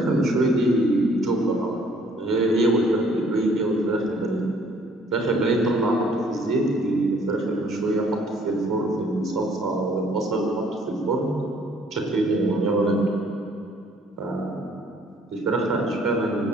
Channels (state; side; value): normal; both; correlation 0.61